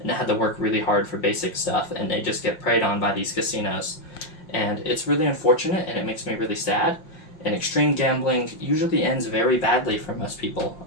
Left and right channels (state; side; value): late; right; 5.6 ms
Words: they had to work really hard for basic stuff, and they just get preyed on by these casinos. And it's really unfortunate, and it makes me really sad. And extreme gambling usually ends very badly for most people.